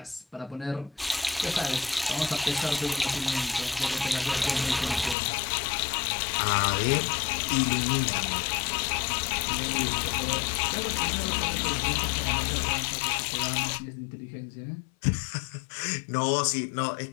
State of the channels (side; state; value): right; drops out; at 5.2 s